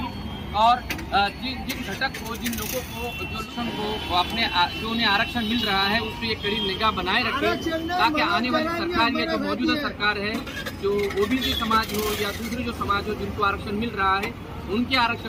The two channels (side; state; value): both; identical; correlation 1.00